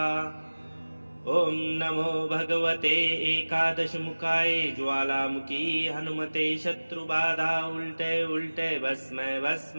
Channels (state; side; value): inverted; both; correlation -1.00